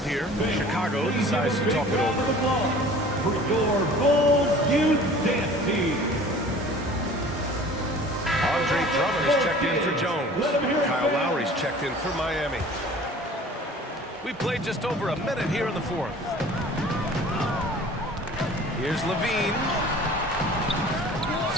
here. Chicago decides to talk it over. For your Bulls Youth Dance Team. Andre Drummond is checked in for Jones. Kyle Lowry's checked in for Miami. We played just over a minute here in the fourth. Here's Levine.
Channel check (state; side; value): normal; both; correlation 0.46